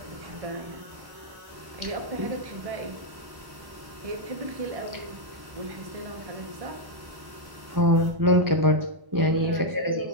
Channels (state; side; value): late; left; 1.1 ms